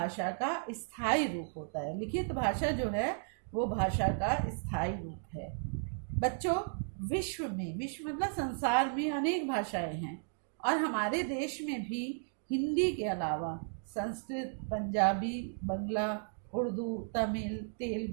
का स्थायी रूप होता है। लिखित भाषा जो है वो भाषा का स्थायी रूप है। बच्चों, विश्व मतलब संसार में अनेक भाषाएं हैं और हमारे देश में भी हिंदी के अलावा संस्कृत, पंजाबी, बंगला, उर्दू, तमिल,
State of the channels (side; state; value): left; silent; digital silence